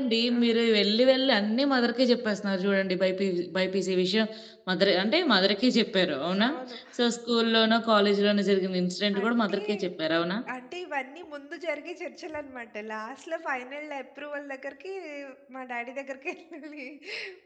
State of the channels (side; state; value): both; identical; correlation 1.00